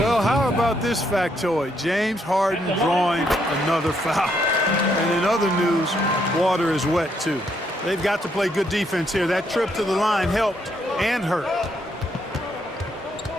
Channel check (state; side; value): normal; both; correlation 0.74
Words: how about this factoid? James Harden drawing another foul. And in other news, water is wet too. They've got to play good defense here. That trip to the line helped and hurt.